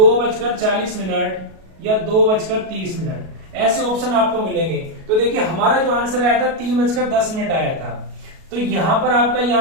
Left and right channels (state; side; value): late; left; 37 ms